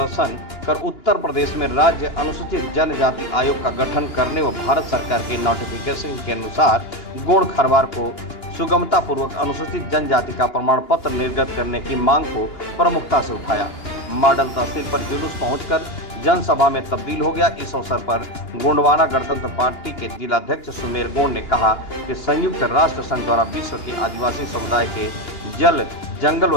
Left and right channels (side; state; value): right; late; 2.9 ms